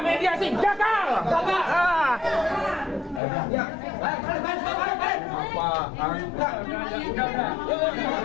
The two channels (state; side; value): drops out; right; at 3.2 s